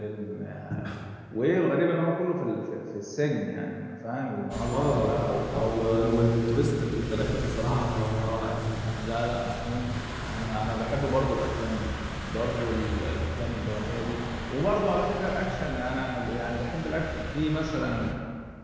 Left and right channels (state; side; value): identical; both; correlation 1.00